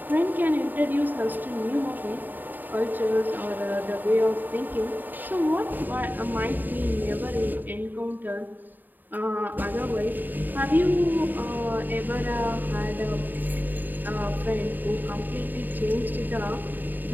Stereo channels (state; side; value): late; left; 0.089 ms